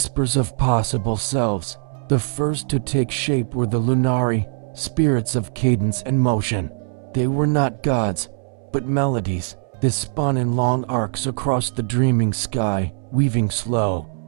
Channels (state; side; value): silent; left; 65 dB below the other